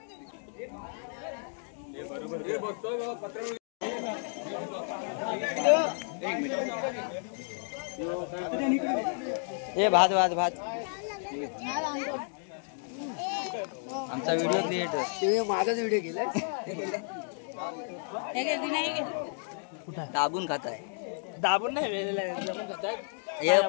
ए भात भात भात. आमचा व्हिडिओ क्रिएटर. माझाच व्हिडिओ केलाय. दाबून खात आहे. दाबून नाही. हे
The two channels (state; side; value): silent; right; 57 dB below the other